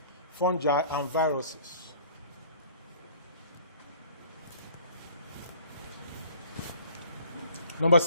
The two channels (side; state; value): both; inverted; correlation -0.51